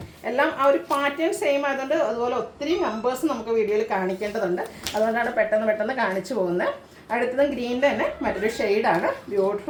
എല്ലാം ആ ഒരു പാറ്റേൺ സെയിം ആയതുകൊണ്ട് അതുപോലെ ഒത്തിരി നമ്പേഴ്സ് നമുക്ക് വീഡിയോയിൽ കാണിക്കേണ്ടതുണ്ട്. അതുകൊണ്ടാണ് പെട്ടെന്ന് കാണിച്ചു പോകുന്നത്. അടുത്തതും ഗ്രീനിൻ്റെ തന്നെ മറ്റൊരു ഷെയ്ഡാണ്.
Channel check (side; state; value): both; identical; correlation 1.00